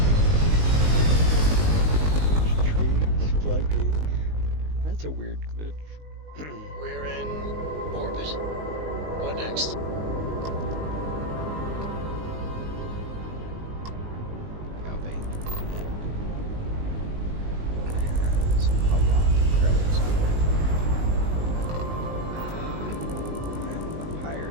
Trees flanking. That's a weird glitch. We're in orbit. What next? Galvane has a lot of credits on it. I'm a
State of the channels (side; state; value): left; late; 19 ms